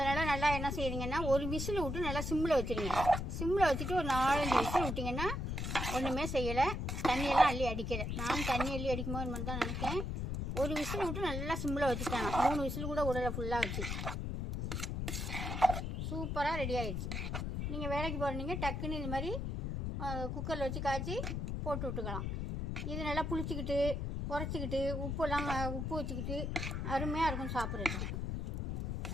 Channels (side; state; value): left; noise; rumble, 2 dB below the sound